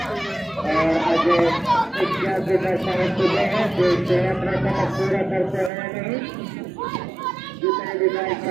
और अजय इत्यादि दर्शन चुके हैं जो इसे अपना काम पूरा करते हैं नहीं। जितने भी बाइक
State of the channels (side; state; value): left; drops out; at 5.7 s